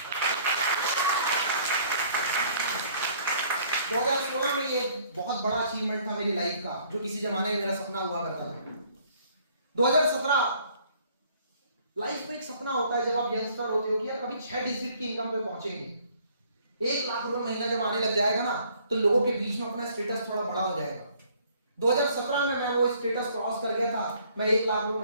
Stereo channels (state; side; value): inverted; both; correlation -0.60